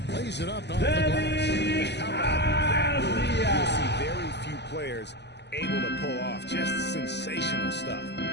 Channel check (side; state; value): right; late; 0.50 ms